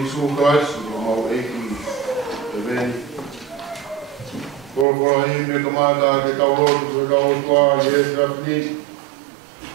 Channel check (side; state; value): left; drops out; at 4.9 s